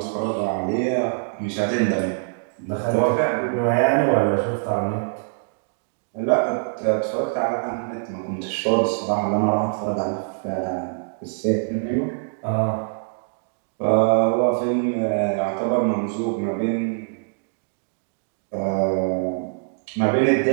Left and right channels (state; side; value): silent; left; digital silence